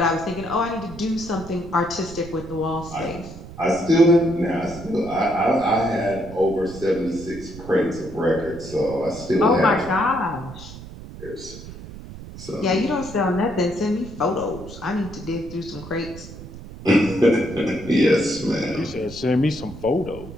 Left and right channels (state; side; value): noise; right; rumble, 14 dB below the sound